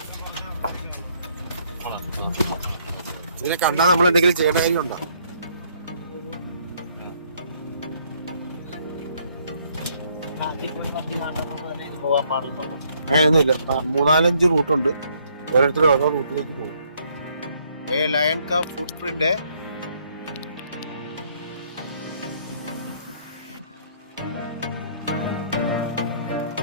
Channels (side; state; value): both; inverted; correlation -0.67